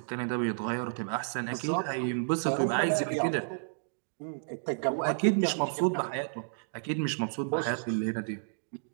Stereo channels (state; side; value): silent; left; digital silence